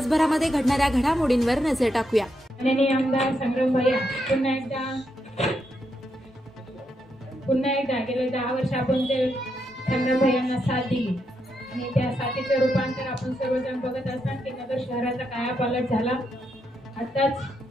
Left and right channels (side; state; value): both; normal; correlation 0.81